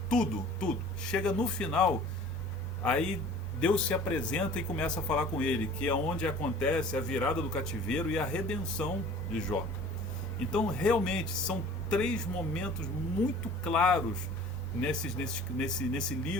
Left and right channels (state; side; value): normal; both; correlation 0.47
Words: tudo. Chega no final, aí Deus se apresenta e começa a falar com ele, que é onde acontece a virada do cativeiro e a redenção de Jó. Então, realmente, são 3 momentos muito claros nesse